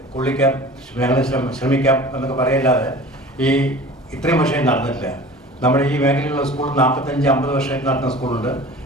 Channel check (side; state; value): both; normal; correlation 0.41